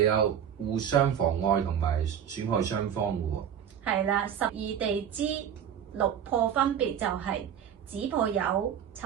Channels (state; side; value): quieter; left; 8.9 dB